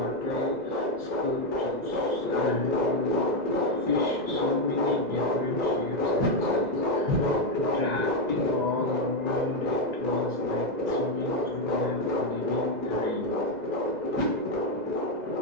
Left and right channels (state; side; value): late; left; 1.9 ms